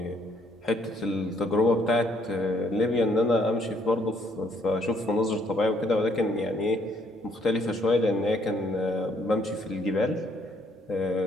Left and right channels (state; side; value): normal; both; correlation 0.68